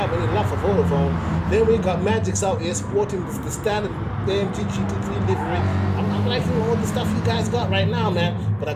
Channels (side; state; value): both; identical; correlation 1.00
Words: any love for Vodafone. Then we got Magix out here sporting the standard AMG GT3 livery. I'm liking all the stuff you guys got right now, man. But I